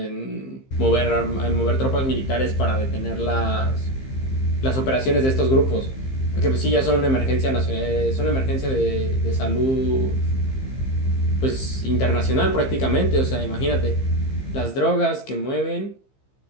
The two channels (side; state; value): right; late; 15 ms